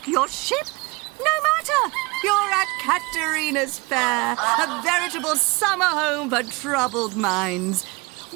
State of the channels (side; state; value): left; quieter; 26.1 dB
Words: your ship? No matter. You're at Katerina's Fair, a veritable summer home for troubled minds.